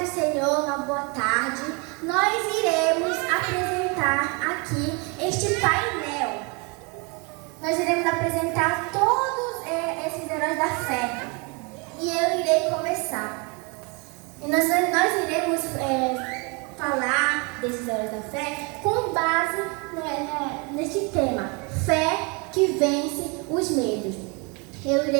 do Senhor, uma boa tarde. Nós iremos apresentar aqui este painel. Nós iremos apresentar todos esses heróis da fé. E eu irei começar. E nós iremos falar desses heróis da fé com base neste tema: fé que vence os medos. Eu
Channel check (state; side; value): quieter; left; 31.3 dB